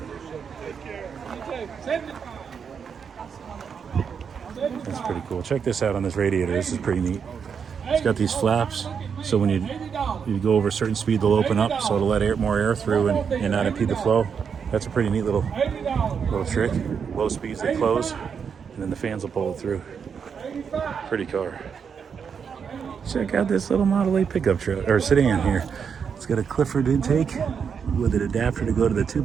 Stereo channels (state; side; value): quieter; left; 6.7 dB